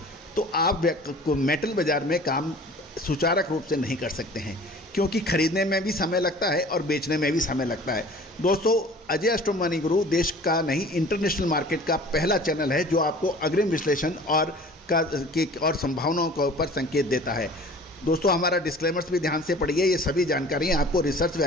तो आप मेटल बाजार में काम सुचारक रूप से नहीं कर सकते हैं, क्योंकि खरीदने में भी समय लगता है और बेचने में भी समय लगता है। दोस्तों अजय एस्ट्रो मनी गुरु देश का नहीं इंटरनेशनल मार्केट का पहला चैनल है जो आपको अग्रिम विश्लेषण और संभावनाओं के ऊपर संकेत देता है। दोस्तों हमारा डिस्क्लेमर्स भी ध्यान से पढ़िए, ये सभी जानकारियाँ आपको रिसर्च व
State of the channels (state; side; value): normal; both; correlation 0.46